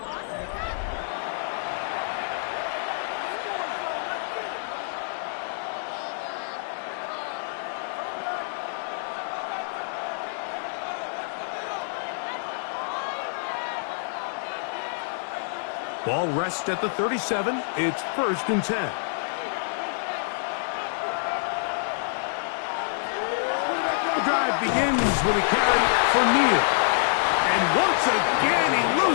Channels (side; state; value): right; silent; digital silence